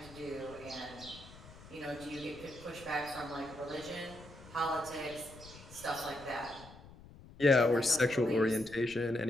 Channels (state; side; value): noise; left; rumble, 19 dB below the sound